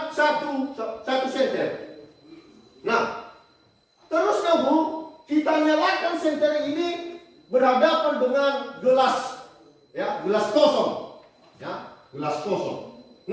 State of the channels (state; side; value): identical; both; correlation 1.00